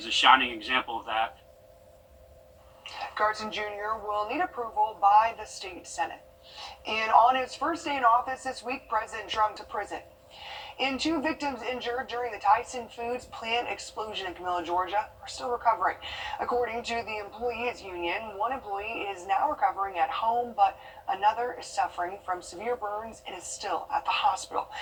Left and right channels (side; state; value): both; identical; correlation 1.00